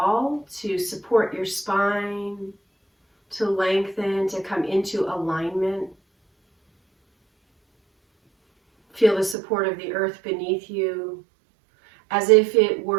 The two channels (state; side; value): drops out; left; at 9.3 s